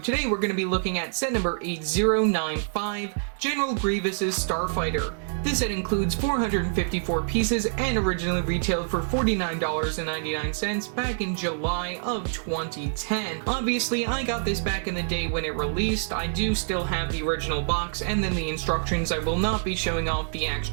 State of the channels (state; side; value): silent; left; 61 dB below the other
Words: we're going to be looking at set number 8095, General Grievous Starfighter. This set includes 454 pieces and originally retailed for $49.99 back in July of 2010. Obviously, I got this back in the day when it released. I do still have the original box and then the instructions. I will not be showing off the